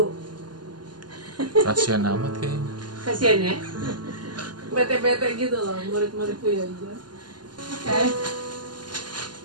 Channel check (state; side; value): late; left; 0.71 ms